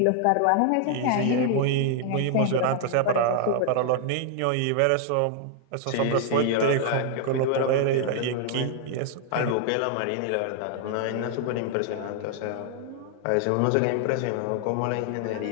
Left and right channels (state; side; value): different; both; correlation 0.00